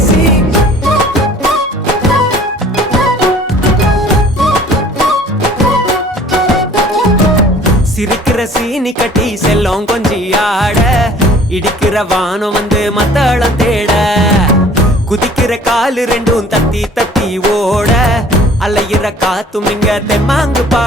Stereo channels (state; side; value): normal; both; correlation 0.51